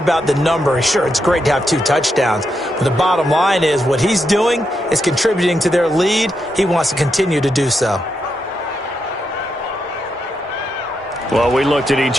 the number. Sure, it's great to have 2 touchdowns. But the bottom line is what he's doing is contributing to their lead. He wants to continue to do so. Well, we looked at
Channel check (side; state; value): both; normal; correlation 0.83